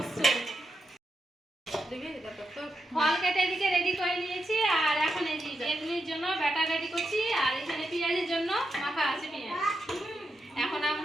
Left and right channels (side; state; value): both; normal; correlation 0.85